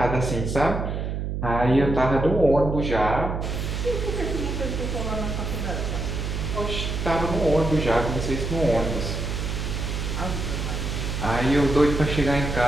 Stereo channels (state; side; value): noise; right; hum, 3 dB below the sound